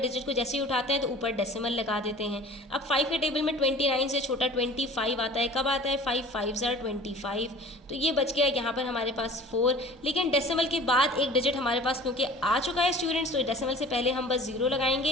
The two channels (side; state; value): both; normal; correlation 0.44